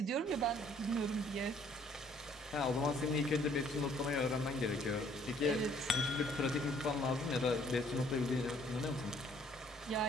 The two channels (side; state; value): both; normal; correlation 0.61